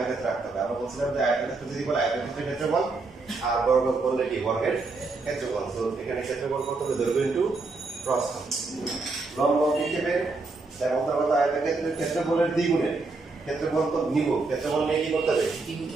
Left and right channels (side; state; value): left; quieter; 3.7 dB